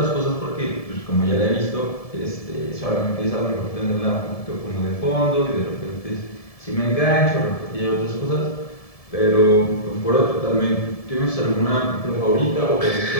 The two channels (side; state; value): right; late; 1.7 ms